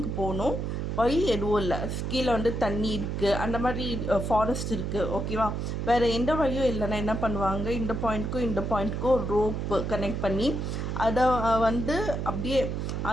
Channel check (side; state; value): right; noise; hum, 2 dB below the sound